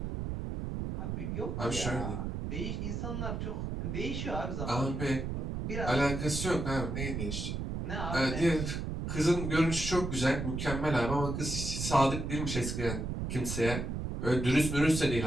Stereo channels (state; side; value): noise; right; rumble, 3 dB below the sound